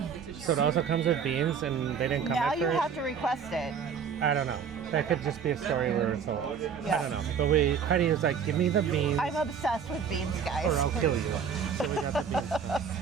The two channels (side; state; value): left; quieter; 6.8 dB